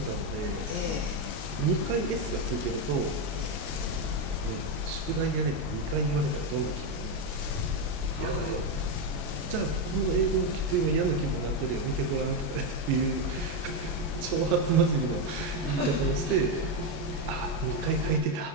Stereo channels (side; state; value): left; late; 28 ms